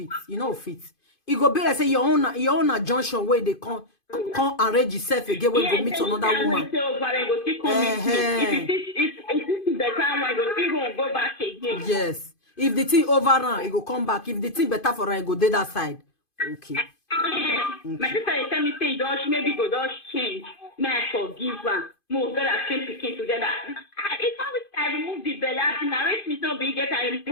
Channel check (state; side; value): late; right; 2.5 ms